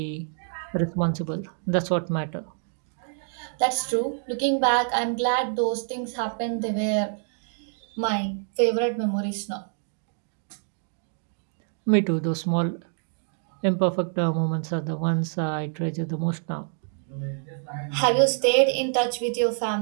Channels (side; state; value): left; silent; 60 dB below the other